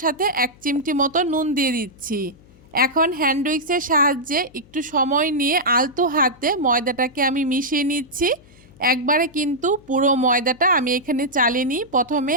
সাথে 1 চিমটি মতো নুন দিয়ে দিচ্ছি। এখন হ্যান্ড উইক্সের সাহায্যে একটু সময় নিয়ে আলতো হাতে ময়দাটাকে আমি মিশিয়ে নিচ্ছি। একবারে কিন্তু পুরো ময়দাটা আমি এখানে চালিনি, প্রথমে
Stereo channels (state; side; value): noise; left; hum, 26 dB below the sound